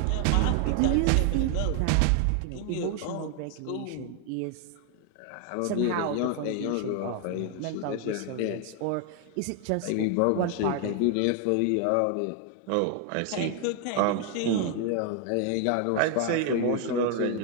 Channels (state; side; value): different; both; correlation 0.01